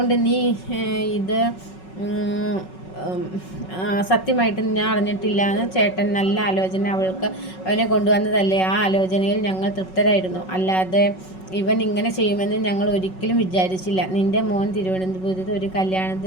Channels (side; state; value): right; late; 5.4 ms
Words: നീ ഇത് സത്യമായിട്ട് ഞാൻ അറിഞ്ഞിട്ടില്ല എന്ന് ചേട്ടൻ നല്ല ആലോചന അവനെ കൊണ്ടുവന്നതല്ലേ? ആ ആലോചനയിൽ ഞങ്ങൾ തൃപ്തരായിരുന്നു. അല്ലാതെ ഇവൻ ഇങ്ങനെ ചെയ്യുമെന്ന് ഞങ്ങൾ ഒരിക്കലും വിചാരിച്ചില്ല. നിൻ്റെ മോൻ തിരുവനന്തപുരത്ത് ഒരു